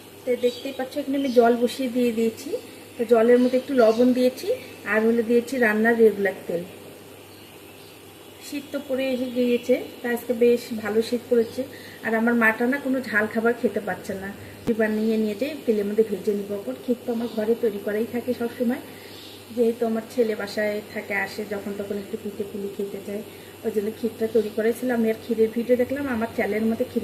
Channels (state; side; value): identical; both; correlation 1.00